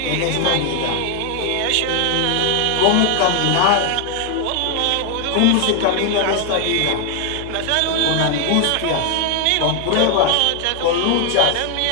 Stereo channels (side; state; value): both; different; correlation 0.00